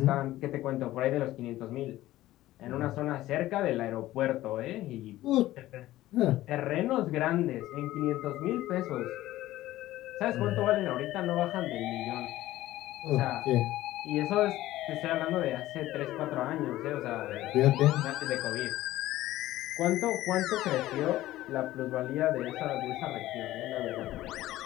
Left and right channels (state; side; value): quieter; right; 15.6 dB